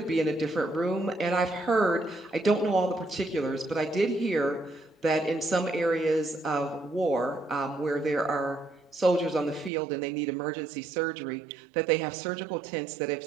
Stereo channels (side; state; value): left; drops out; at 9.7 s